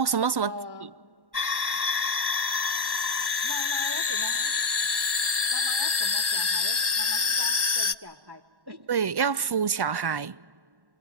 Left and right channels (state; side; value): late; left; 1.1 ms